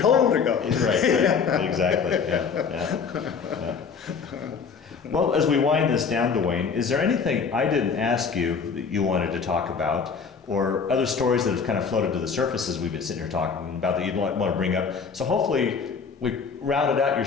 to go. Right. Exactly. Yeah. Well, as we wind this down, Duane, is there anything I didn't ask you that you wanted to talk about, or other stories that have kind of floated to the surface as we've been sitting here talking about that you'd want to bring up? So hopefully we rounded out your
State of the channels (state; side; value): quieter; right; 5.7 dB